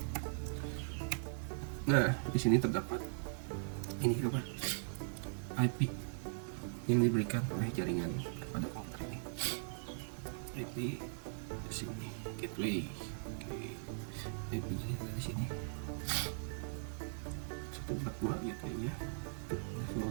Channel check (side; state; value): left; silent; digital silence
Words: Nah, di sini terdapat ini apa? IP yang diberikan oleh jaringan kepada komputer ini. IP di sini, gateway. Oke. IP di sini. 142 gateway-nya.